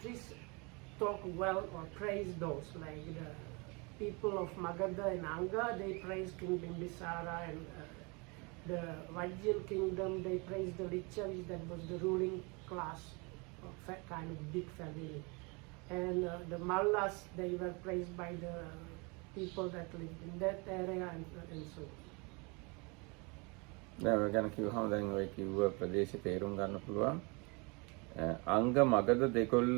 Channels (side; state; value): left; quieter; 29.9 dB